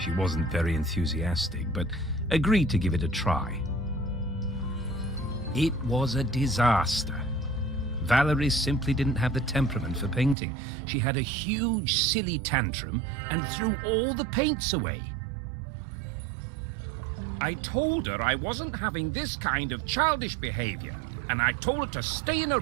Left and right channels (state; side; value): drops out; left; at 10.4 s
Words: wasn't very enthusiastic, but agreed to give it a try. It was a disaster. Valerie simply didn't have the temperament for painting. She had a huge, silly tantrum and threw all the paints away. I told her I wasn't having this kind of childish behavior, and I told her to stay in her